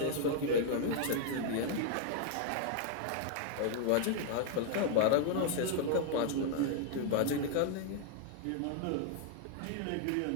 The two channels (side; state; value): both; different; correlation 0.00